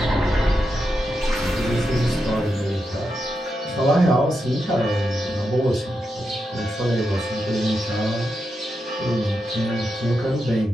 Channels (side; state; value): both; normal; correlation 0.86